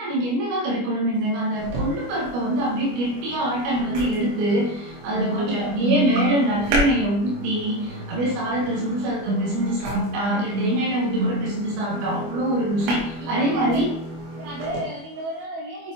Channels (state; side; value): late; left; 25 ms